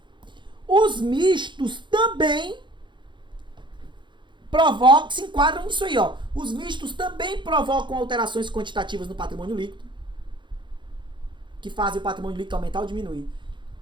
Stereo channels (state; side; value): late; left; 0.23 ms